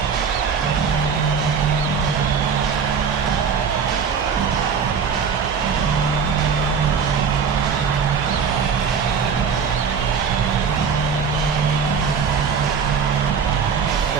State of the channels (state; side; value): quieter; left; 6.3 dB